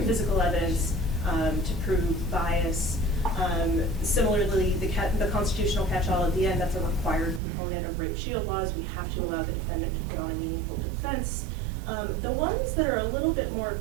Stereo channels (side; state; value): left; drops out; at 7.4 s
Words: physical evidence to prove bias. Similarly, the constitutional catch-all at the end, that's a required component of rape shield laws. We have to allow the defendant to put on a meaningful defense. The ones that are a little bit more